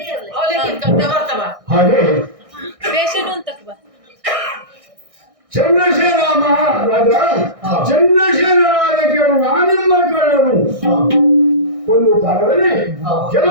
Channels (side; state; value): left; late; 1.6 ms